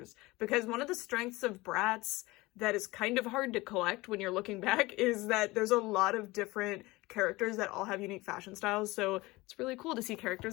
because one of the strengths of Bratz that is kind of hard to collect when you're looking back is that there's a lot of different characters that all have unique fashion styles, so it's really cool to see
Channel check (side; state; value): right; quieter; 21.1 dB